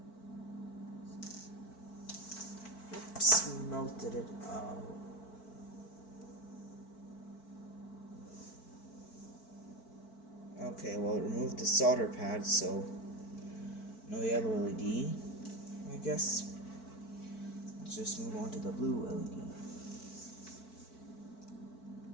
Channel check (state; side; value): late; right; 4.5 ms